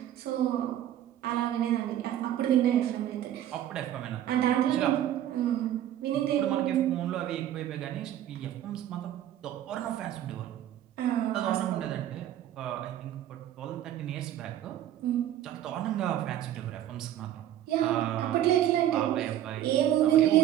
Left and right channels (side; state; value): left; quieter; 11.8 dB